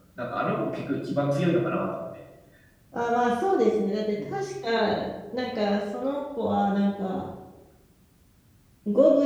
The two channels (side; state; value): both; identical; correlation 1.00